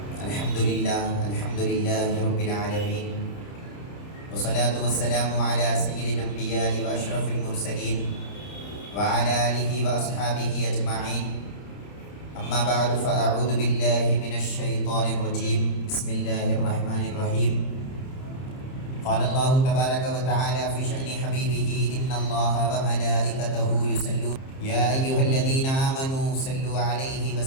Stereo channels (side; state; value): right; late; 30 ms